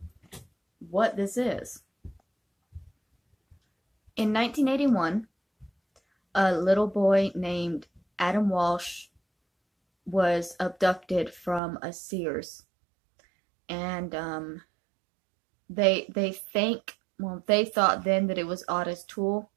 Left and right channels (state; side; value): drops out; left; at 11.6 s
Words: what this is. In 1981, a little boy named Adam Walsh was abducted from a Sears. And they thought then that it was Otto's tool.